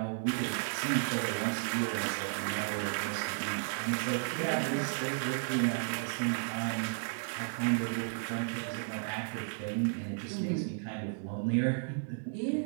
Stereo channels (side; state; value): left; silent; 55 dB below the other